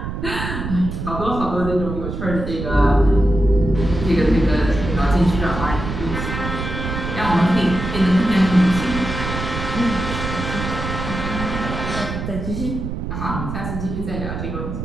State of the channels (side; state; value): right; noise; rumble, 5 dB below the sound